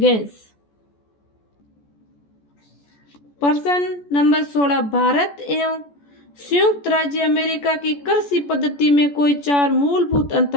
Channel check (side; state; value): right; late; 14 ms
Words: प्रश्न नंबर 16, भारत एवं संयुक्त राज्य अमेरिका की कृषि पद्धति में कोई 4 मूलभूत